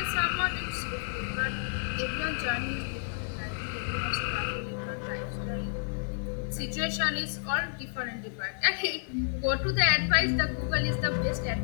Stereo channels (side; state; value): right; silent; digital silence